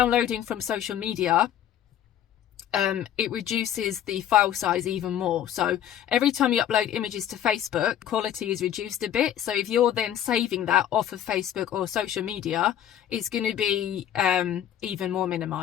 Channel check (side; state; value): right; quieter; 10.6 dB